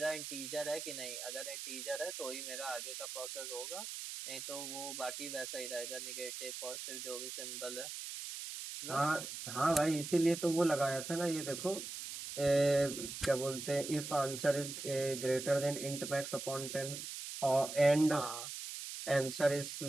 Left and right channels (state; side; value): noise; right; hiss, 7 dB below the sound